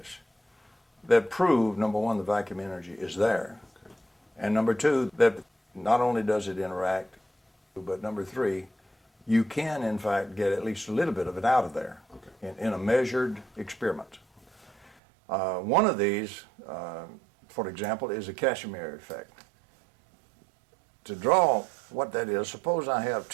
that prove, number one, the vacuum energy is there, and number two, that not only does it interact, but number three, you can in fact get at least a little bit of it out of there in a measured experiment. One of these, for example, is a Casimir effect. To draw what that is, suppose I have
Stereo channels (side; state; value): left; drops out; at 15.0 s